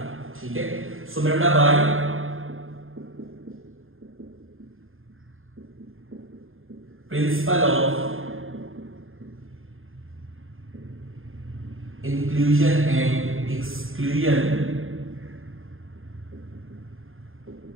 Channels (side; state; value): left; late; 0.60 ms